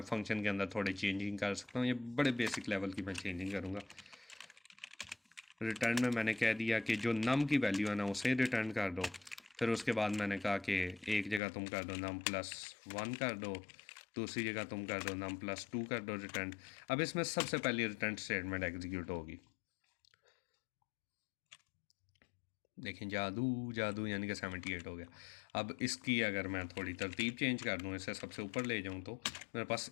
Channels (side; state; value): right; drops out; at 11.4 s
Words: फंक्शन के अंदर थोड़ी चेंजिंग कर सकता हूँ, ये बड़े बेसिक लेवल की मैं चेंजिंग करूँगा। रिटर्न में मैंने कह दिया कि जो नम की वैल्यू है ना उसे रिटर्न कर दो, फिर उसके बाद मैंने कहा कि एक जगह तुम कर दो नम +1 कर दो, दूसरी जगह तुम कर दो नम +2 कर दो रिटर्न। अब इसमें सबसे पहले रिटर्न स्टेटमेंट एग्जीक्यूट होगी, देखें जादू जादू, यानी कि 78 हो गया। अब इसकी अगर मैं थोड़ी तरतीब चेंज कर दूँ, इसे सबसे ऊपर ले जाऊँ तो मेरे पास